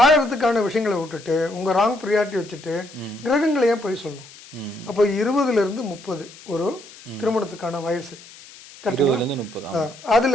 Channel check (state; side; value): noise; left; hiss, 20 dB below the sound